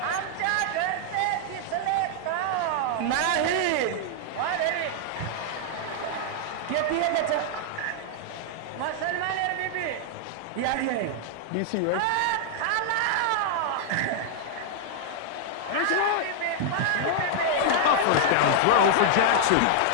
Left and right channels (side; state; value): both; different; correlation -0.01